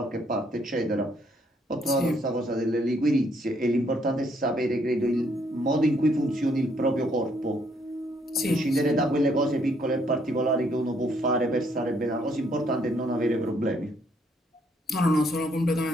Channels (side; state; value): both; normal; correlation 0.69